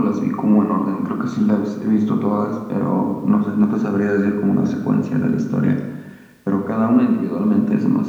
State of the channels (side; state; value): both; identical; correlation 1.00